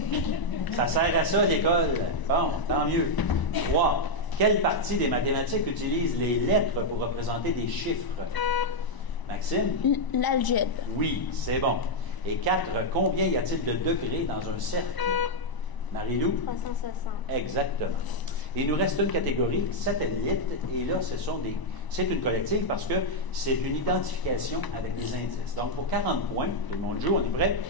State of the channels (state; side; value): late; right; 1.0 ms